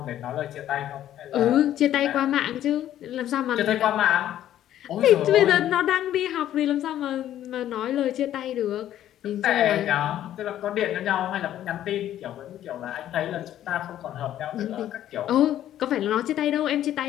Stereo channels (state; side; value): quieter; right; 11.9 dB